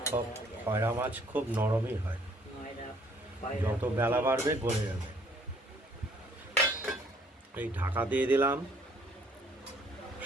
সব খয়রা মাছ খুব নরমই হয়, যত বেলা বাড়বে গলে যাবে। এই ঢাকা দিয়ে দিলাম,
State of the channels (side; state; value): both; normal; correlation 0.62